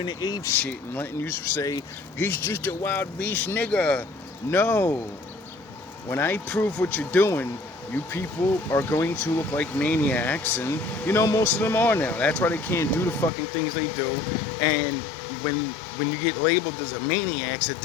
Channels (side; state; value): right; drops out; at 13.3 s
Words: to ape shit and letting you say, he's just a wild beast nigga. No. When I prove what you're doing, you people are going to look like maniacs, and most of them are now. That's why they can't do the fucking things they do. And when you get labeled as a maniac,